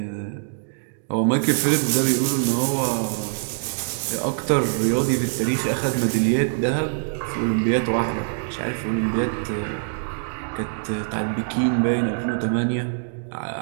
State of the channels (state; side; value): silent; left; digital silence